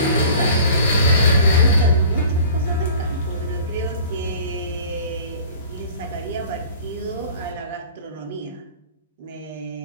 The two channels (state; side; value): inverted; both; correlation -0.46